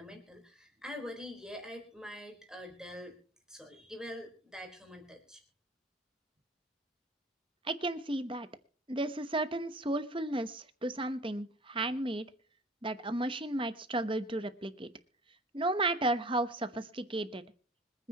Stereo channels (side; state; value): both; normal; correlation 0.46